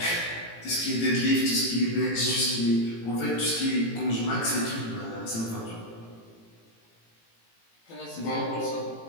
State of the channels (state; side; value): late; right; 18 ms